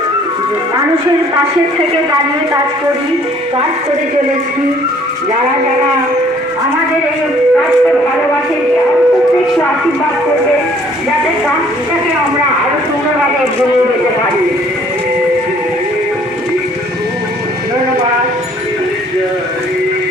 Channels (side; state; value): both; normal; correlation 0.58